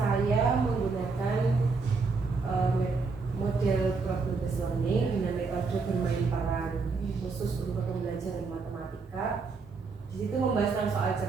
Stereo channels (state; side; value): quieter; left; 4.4 dB